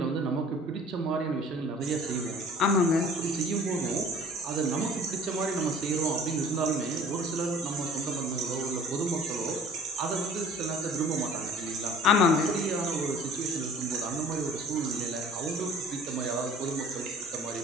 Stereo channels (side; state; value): both; normal; correlation 0.49